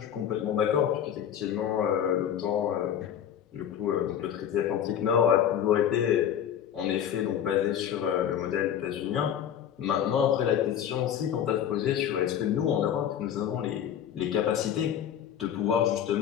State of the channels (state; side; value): quieter; right; 9.6 dB